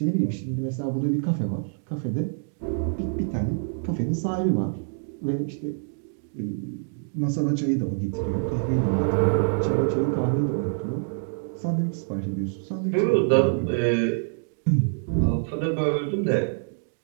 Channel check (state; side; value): silent; left; digital silence